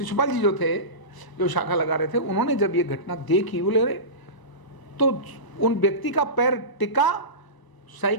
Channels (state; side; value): late; right; 1.0 ms